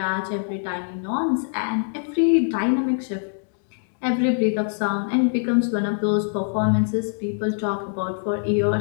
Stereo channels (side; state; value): right; silent; 63 dB below the other